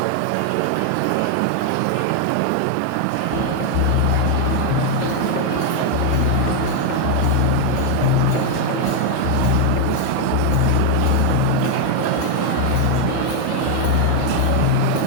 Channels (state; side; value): different; both; correlation 0.00